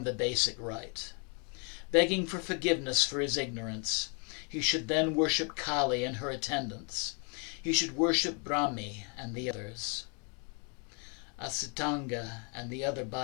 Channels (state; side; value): quieter; right; 36.1 dB